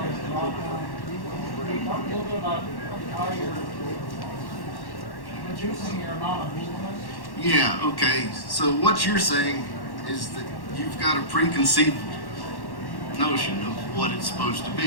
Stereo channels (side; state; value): right; late; 1.1 ms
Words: of drop-downs. Can you talk a little bit about how you're reducing your amount of movement? Yeah, okay. So what you're saying is that you've got a preconceived notion of what it's supposed to